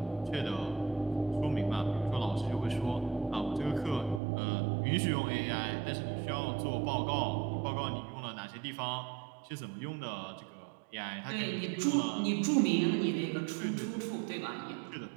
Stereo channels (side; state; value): left; drops out; at 4.2 s